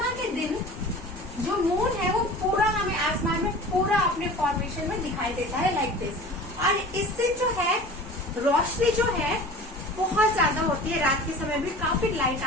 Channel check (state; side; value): normal; both; correlation 0.40